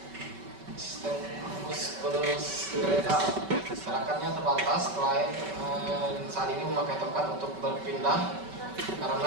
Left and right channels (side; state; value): left; late; 5.2 ms